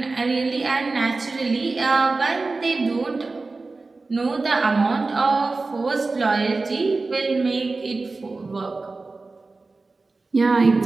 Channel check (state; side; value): quieter; left; 3.6 dB